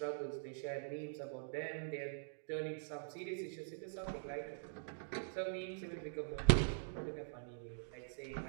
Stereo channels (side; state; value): left; silent; digital silence